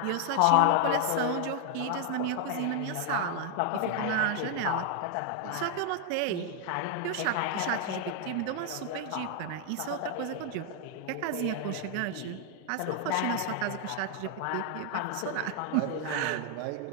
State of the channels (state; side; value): different; both; correlation 0.00